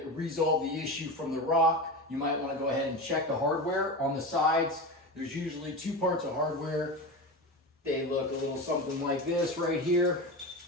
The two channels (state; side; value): normal; both; correlation 0.24